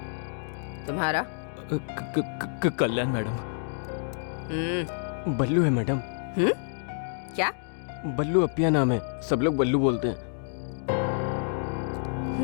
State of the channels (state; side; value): silent; right; digital silence